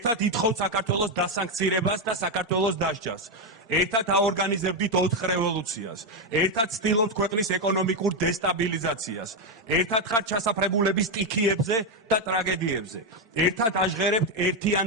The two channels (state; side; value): normal; both; correlation 0.05